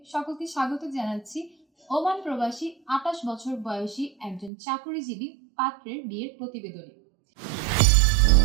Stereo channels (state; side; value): drops out; left; at 4.5 s